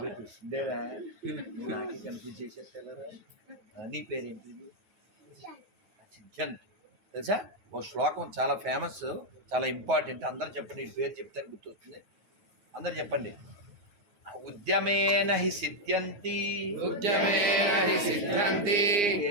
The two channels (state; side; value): late; left; 9.7 ms